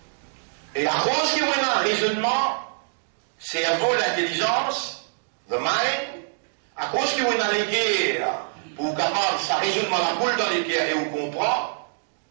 Et à cause qu'il y a un raisonnement, cerveau, l'intelligence, the mind, à cause qu'il y a les guerres, pour capable, ça raisonnement la boule dans les guerres et vous comprend,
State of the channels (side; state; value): left; silent; digital silence